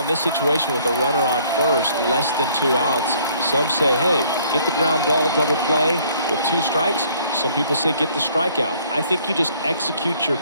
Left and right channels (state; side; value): inverted; both; correlation -0.60